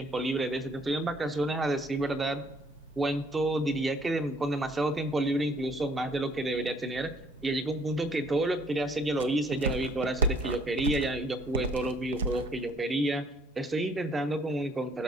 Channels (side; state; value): both; normal; correlation 0.61